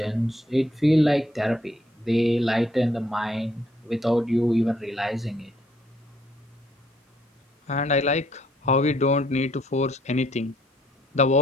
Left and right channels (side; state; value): both; normal; correlation 0.67